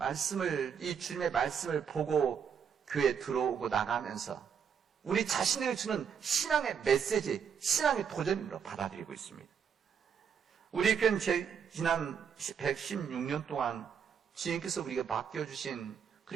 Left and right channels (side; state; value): left; quieter; 7.2 dB